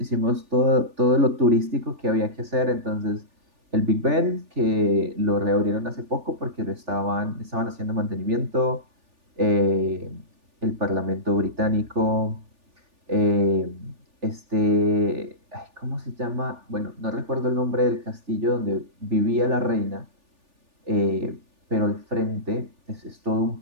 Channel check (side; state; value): left; late; 3.4 ms